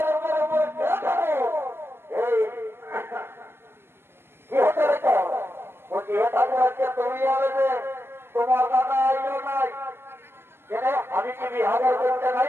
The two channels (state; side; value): late; left; 0.11 ms